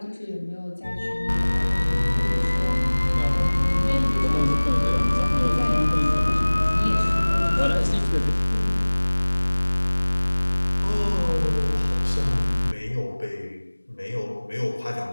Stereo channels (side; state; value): both; inverted; correlation -1.00